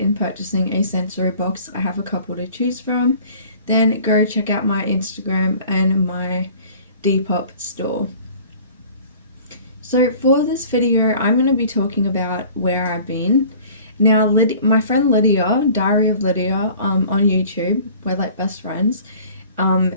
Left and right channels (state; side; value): inverted; both; correlation -0.48